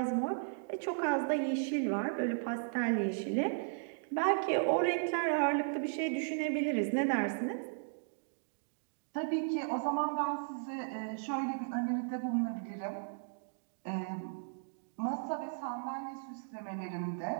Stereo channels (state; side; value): silent; left; digital silence